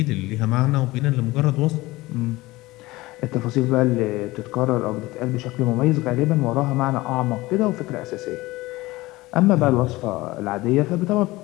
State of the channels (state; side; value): quieter; right; 19.7 dB